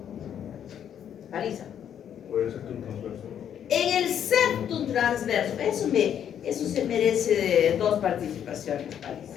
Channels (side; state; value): right; quieter; 9.3 dB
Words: Marisa. En el septum transverso. Eso se merece de 2 participaciones,